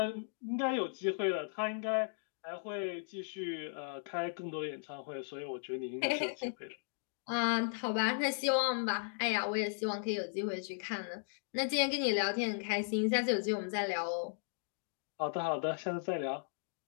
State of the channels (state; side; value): silent; right; digital silence